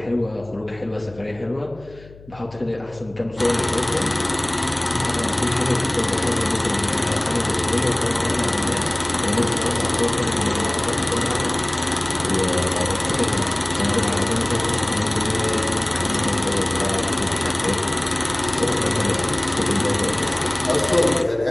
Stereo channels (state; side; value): noise; left; hum, 21 dB below the sound